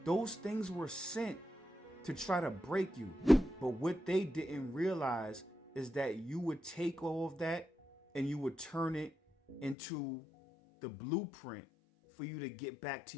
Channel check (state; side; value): drops out; right; at 9.8 s